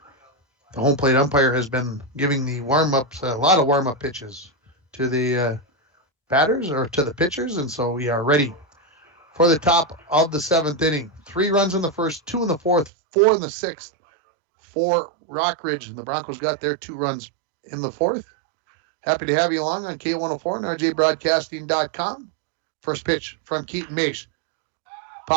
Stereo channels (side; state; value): left; drops out; at 12.9 s